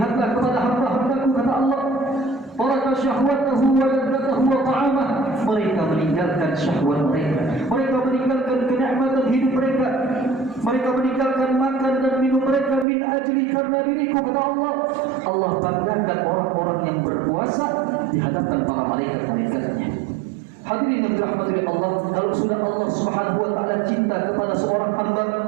kepada hamba-hambaku, kata Allah. Taraka syahwatahu wa ladzatahu wa ta'amah. Mereka meninggalkan syahwat mereka, mereka meninggalkan kenikmatan hidup mereka, mereka meninggalkan makan dan minum mereka min ajli, karena diriku, kata Allah. Allah banggakan orang-orang yang berpuasa di hadapan para malaikat-malaikatnya. Hadirin yang dirahmati Allah, kalau sudah Allah Subhanahu wa taala cinta kepada seorang hamba,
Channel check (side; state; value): left; drops out; at 12.9 s